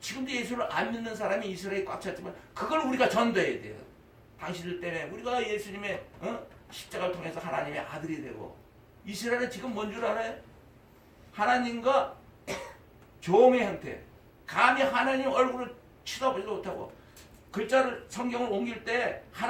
예수를 안 믿는 사람이 이스라엘에 꽉 찼지만 그걸 우리가 전도해야 돼요. 당신들 때문에 우리가 예수님의 십자가를 통해서 하나님의 아들이 되고, 이스라엘은 지금 뭔 줄 알아요? 하나님과 종의 형태, 감히 하나님 얼굴을 쳐다보지도 못하고, 글자를 성경을 옮길 때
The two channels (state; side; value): identical; both; correlation 1.00